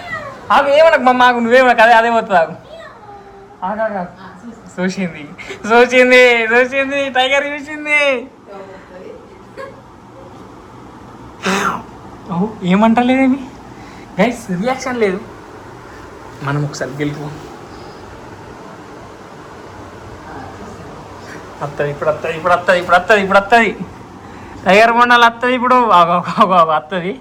ఆగు ఏమనకు మమ్మ, ఆగు నువ్వేమనకు. అదే పోతుంది. ఆగు చూసింది టైగర్ చూసింది. ఏమంటలేదేమి గైస్, రియాక్షన్ లేదు. మనం ఒకసారి గెలుపు వస్తుంది ఇప్పుడు వస్తుంది టైగర్ బొండాలు వస్తుంది ఇప్పుడు వస్తుంది.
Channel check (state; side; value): identical; both; correlation 1.00